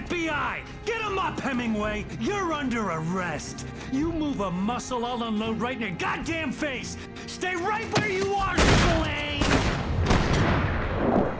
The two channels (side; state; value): both; identical; correlation 1.00